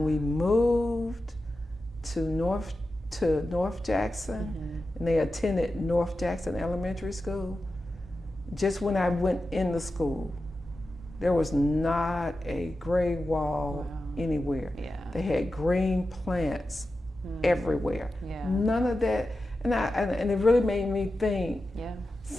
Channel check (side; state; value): both; normal; correlation 0.92